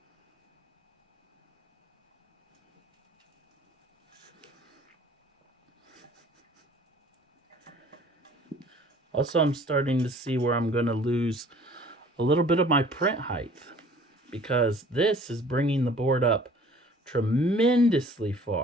Also, I'm starting to see where I'm going to lose a little bit of my print height because this is bringing the board up tremendously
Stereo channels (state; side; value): normal; both; correlation 0.51